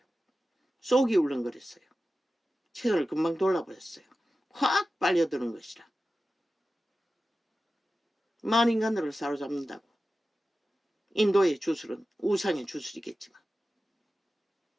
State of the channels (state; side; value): normal; both; correlation 0.94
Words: 속이 울렁거렸어요. 채널을 금방 돌아버렸어요. 확 빨려드는 것이라. 만인간들을 사로잡는다고. 인도의 주술은 우상의 주술이겠지만.